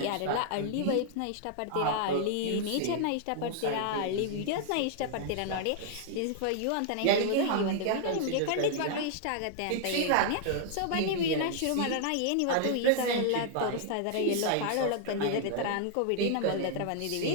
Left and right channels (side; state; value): both; different; correlation -0.01